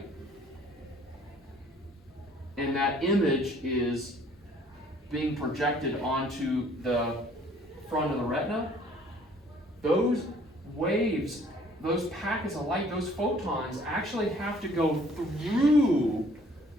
And that image is being projected onto the front of the retina. Those waves, those packets of light, those photons actually have to go through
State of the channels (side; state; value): both; normal; correlation 0.57